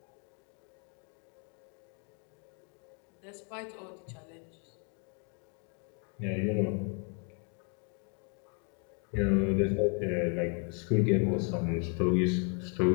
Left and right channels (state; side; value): quieter; right; 37.1 dB